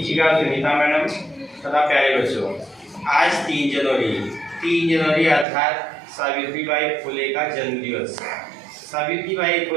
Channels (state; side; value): drops out; left; at 5.5 s